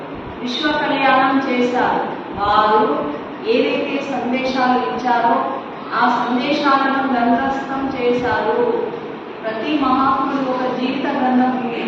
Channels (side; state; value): both; identical; correlation 1.00